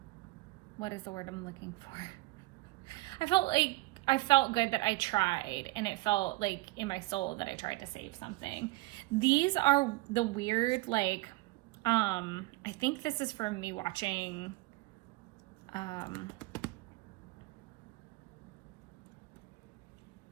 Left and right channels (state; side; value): quieter; left; 20.7 dB